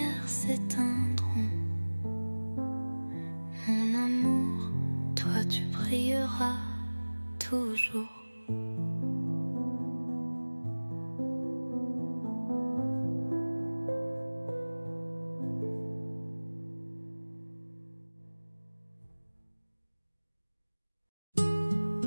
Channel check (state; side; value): inverted; both; correlation -1.00